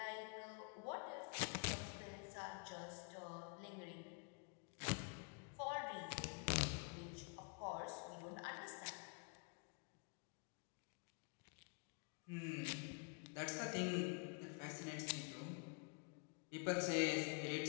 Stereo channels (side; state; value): right; quieter; 37.6 dB